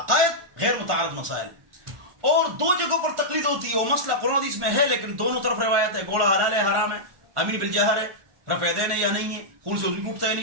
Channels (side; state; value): left; late; 1.4 ms